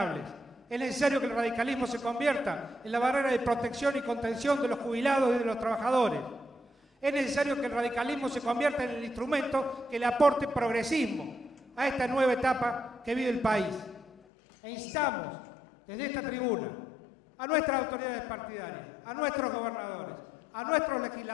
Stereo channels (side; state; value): right; drops out; at 14.1 s